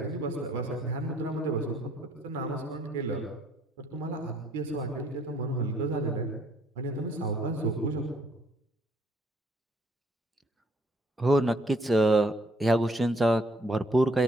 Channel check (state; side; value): normal; both; correlation 0.65